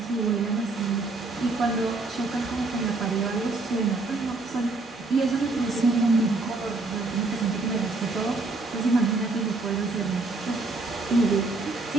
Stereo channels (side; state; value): left; quieter; 3.4 dB